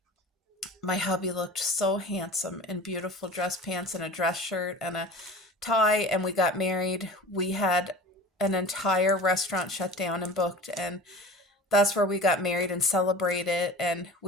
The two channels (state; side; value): normal; both; correlation 0.38